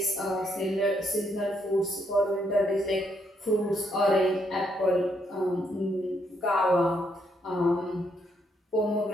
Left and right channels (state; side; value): normal; both; correlation 0.75